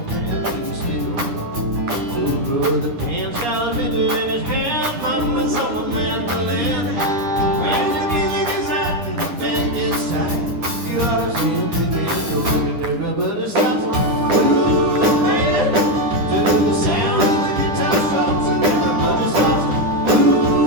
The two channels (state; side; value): late; left; 10 ms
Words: man can steal. So brother Cant's got a liquor in his hand, mama's on the mandolin. When the music is out and the band gets tight, you ought to see him begin to work and everybody stops. Ooh, man, to the sound of the guitar stops and everybody stops.